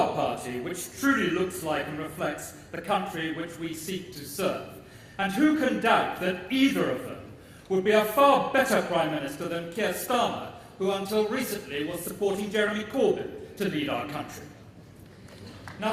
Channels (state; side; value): identical; both; correlation 1.00